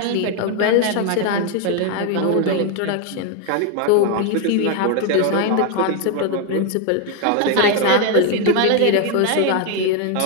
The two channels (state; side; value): different; both; correlation 0.01